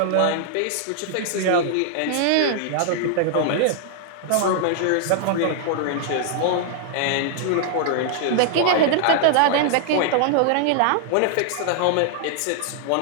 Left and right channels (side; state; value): both; different; correlation -0.01